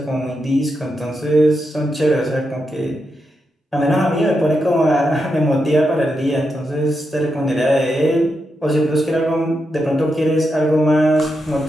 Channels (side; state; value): both; normal; correlation 0.85